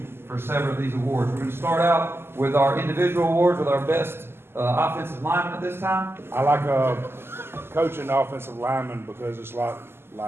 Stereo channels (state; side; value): late; left; 0.12 ms